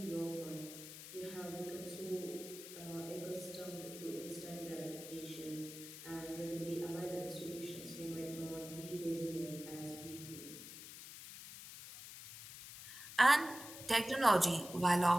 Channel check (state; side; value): noise; left; hiss, 12 dB below the sound